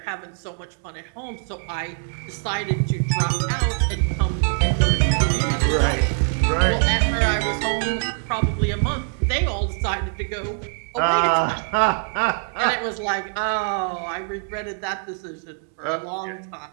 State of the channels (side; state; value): left; silent; 57 dB below the other